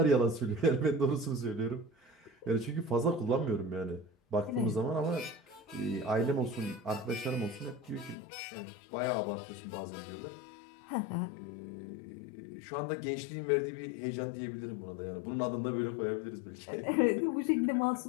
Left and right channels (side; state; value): right; drops out; at 8.2 s